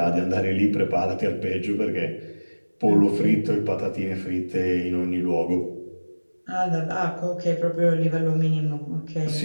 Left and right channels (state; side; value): inverted; both; correlation -1.00